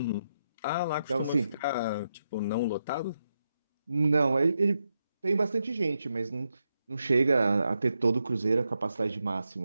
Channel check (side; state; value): both; inverted; correlation -0.85